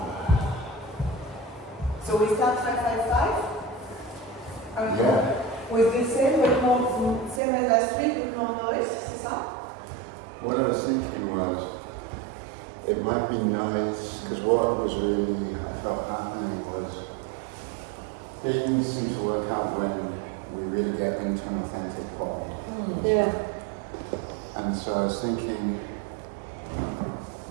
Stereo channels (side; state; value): left; drops out; at 7.4 s